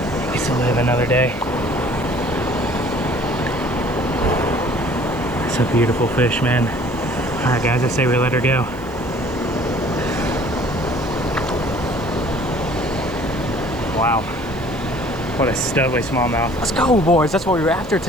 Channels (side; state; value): left; noise; hiss, 26 dB below the sound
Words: Gets to live another day. It's a beautiful fish, man. All right, guys, I say we let her go. Wow, what a studly smallmouth. Let's go, boys. That's what we were after